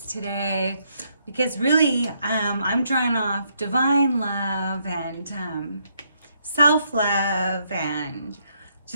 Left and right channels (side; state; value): both; inverted; correlation -0.74